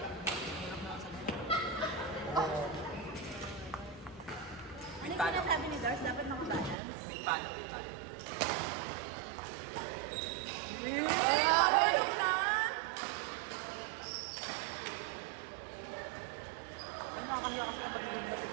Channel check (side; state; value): left; drops out; at 6.8 s